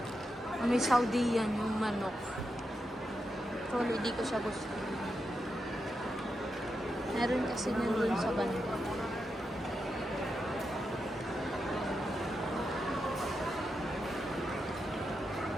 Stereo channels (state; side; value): normal; both; correlation 0.86